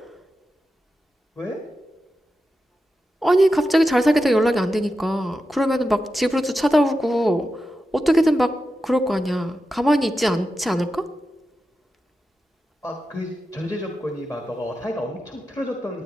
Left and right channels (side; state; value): both; normal; correlation 0.90